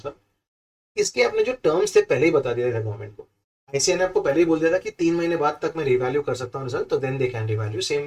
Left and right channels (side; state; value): both; identical; correlation 1.00